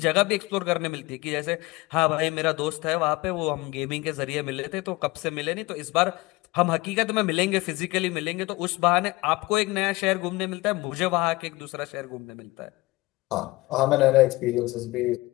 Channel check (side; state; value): right; quieter; 21.3 dB